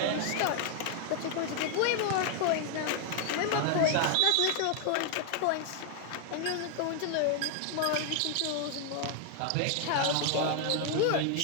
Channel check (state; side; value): different; both; correlation 0.00